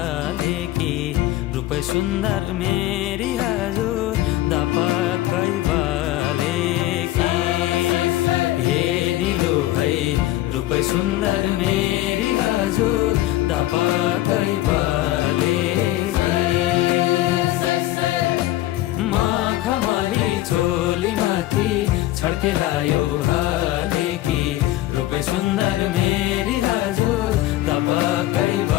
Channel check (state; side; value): quieter; right; 15.6 dB